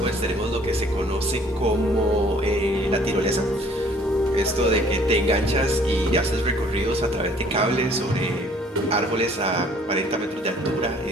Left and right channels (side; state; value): both; normal; correlation 0.57